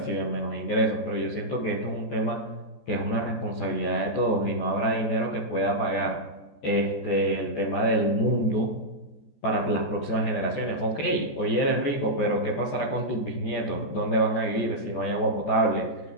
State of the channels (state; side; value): late; right; 14 ms